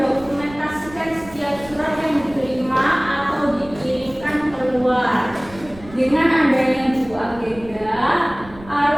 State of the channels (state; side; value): noise; right; rumble, 19 dB below the sound